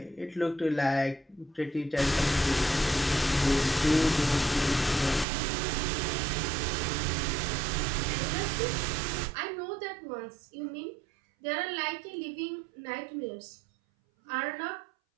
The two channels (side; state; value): left; drops out; at 5.2 s